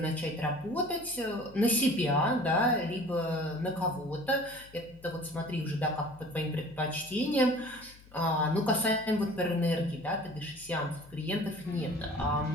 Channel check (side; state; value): left; noise; hum, 23 dB below the sound